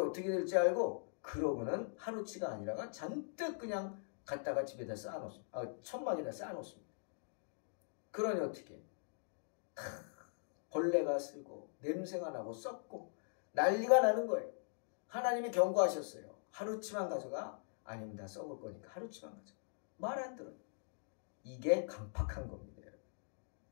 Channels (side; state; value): right; silent; digital silence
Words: 어떻게 될지 알고 그러고는 하루치가 아니라가 잔뜩 그냥 갖다가 집에다 쌓아놓습니다. 천막에다 쌓아놓습니다. 그러니 어떻게? 벌레가 쓰고 냄새가 나고 썩고 난리가 나는 거예요. 하나님이 경고하셨어요. 하루치만 가져가. 아닙니다. 썩을 거니까 하루치만 가져가. 말 안 들어요. 이게 강팍한 겁니다.